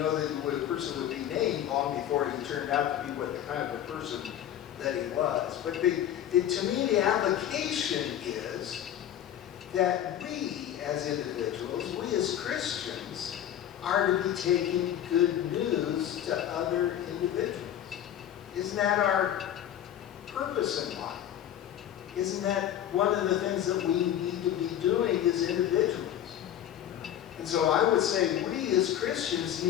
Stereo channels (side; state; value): right; quieter; 10.9 dB